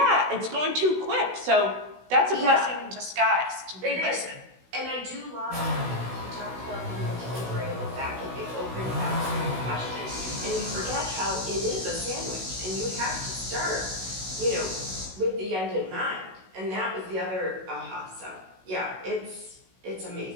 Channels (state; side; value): late; left; 16 ms